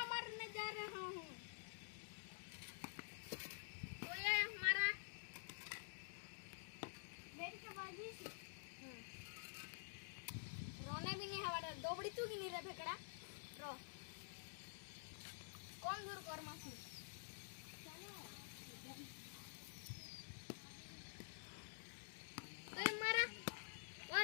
मारने जा रहा हूँ। तो ये हमारा रोने भी नहीं हवा दो बड़ी तू की नहीं रे फेकड़ा रो कौन दूर कर मासू तो हमारा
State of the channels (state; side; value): silent; right; digital silence